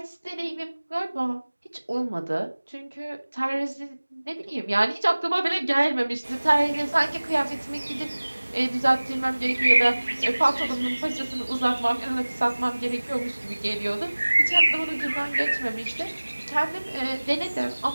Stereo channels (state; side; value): inverted; both; correlation -1.00